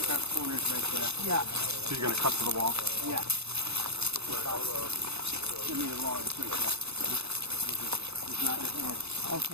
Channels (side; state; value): left; late; 0.80 ms